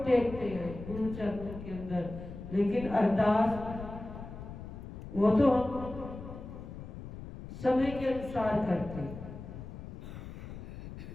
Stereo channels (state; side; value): noise; left; rumble, 11 dB below the sound